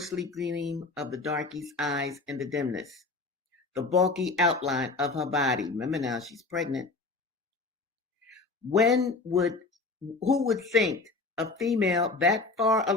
gleam of the darkie's eyes in the dimness, the bulky outline of her body. Remember now, she's pregnant. When would Who would think a female that far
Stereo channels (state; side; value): quieter; right; 3.7 dB